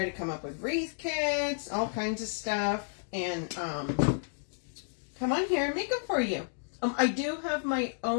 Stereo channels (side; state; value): right; silent; digital silence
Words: to come up with Wreath kits, all kinds of stuff, and come on here and make them for you. I do have my